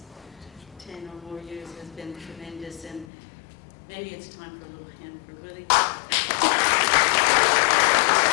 10 or more years has been tremendous, and maybe it's time for a little hand for Willie.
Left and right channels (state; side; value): drops out; right; at 3.1 s